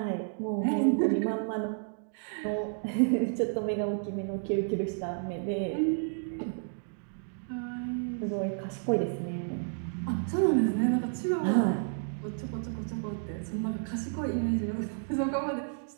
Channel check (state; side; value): silent; left; digital silence